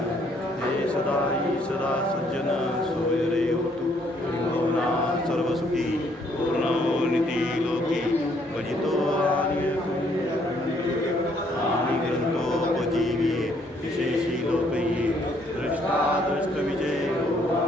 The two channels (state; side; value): normal; both; correlation 0.67